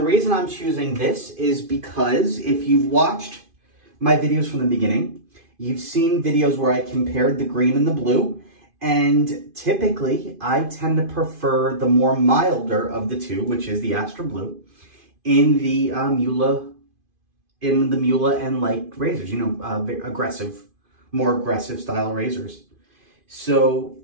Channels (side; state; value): left; late; 2.5 ms